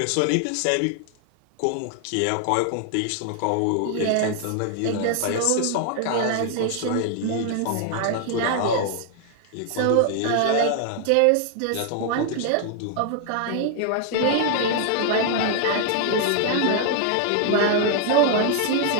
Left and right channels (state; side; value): different; both; correlation 0.00